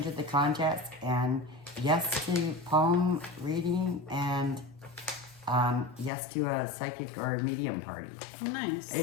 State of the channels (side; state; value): right; drops out; at 6.1 s